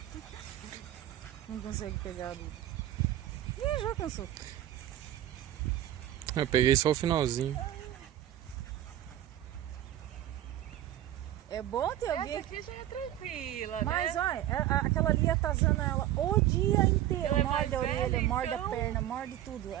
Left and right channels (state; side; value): quieter; left; 12.8 dB